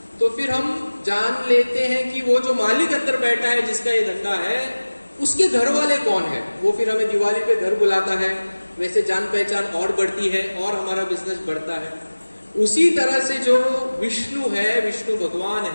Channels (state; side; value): inverted; both; correlation -1.00